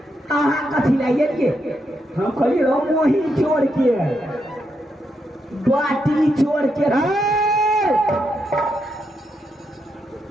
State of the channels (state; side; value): normal; both; correlation 0.81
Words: अहाँ कथी लाइए हम कहलिए रो मोही चोर के बाटी चोर के